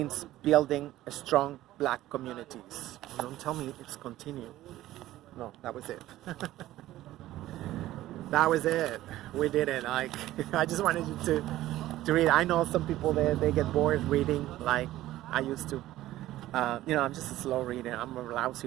building a strong Black communities. Don't tell me it's continued. No, that was it. That was it. We did it. Like, I just wanted you to read. I know some people they get bored reading like I used to. I'm just a slow reader. I'm a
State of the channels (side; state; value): left; quieter; 15.1 dB